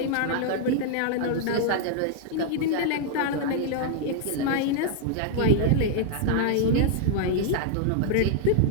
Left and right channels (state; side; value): different; both; correlation 0.00